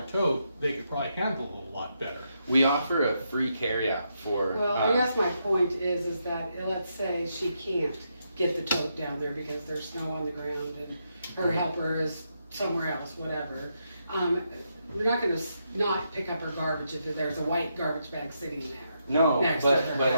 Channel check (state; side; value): inverted; both; correlation -0.81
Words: tote, they could probably handle it a lot better. we offer a free carryout for, well, I guess my point is that, let's say she can't get the tote down there because there's snow on the ground and her helper is somewhere else, whatever. We're not gonna not pick up her garbage if there's a white garbage bag sitting there. no, next to but her